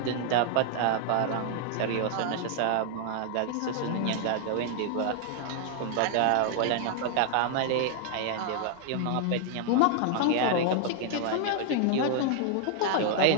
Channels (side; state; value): both; different; correlation 0.00